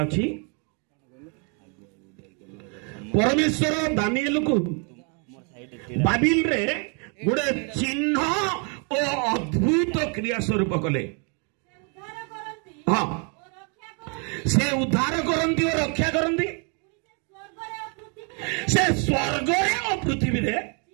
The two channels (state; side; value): quieter; left; 37.0 dB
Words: परमेश्वर दानिएल को बाबिल रे गोटे चिन्ह और अद्भुत क्रिया स्वरूप कले। हाँ से उद्धार करती और रक्षा करती। से स्वर्ग और पृथ्वी रे